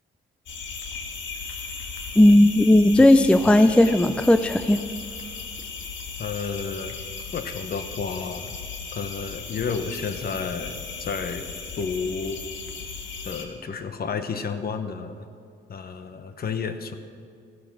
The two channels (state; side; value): normal; both; correlation 0.88